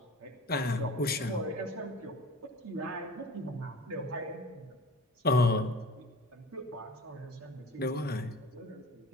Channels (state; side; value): normal; both; correlation 0.40